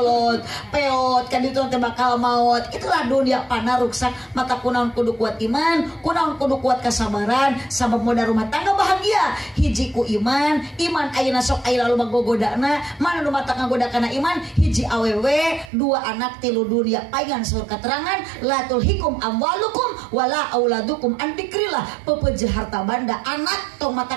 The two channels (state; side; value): drops out; left; at 15.7 s